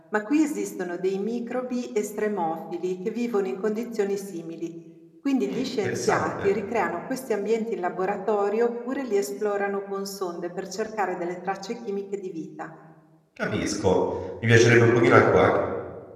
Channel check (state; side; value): identical; both; correlation 1.00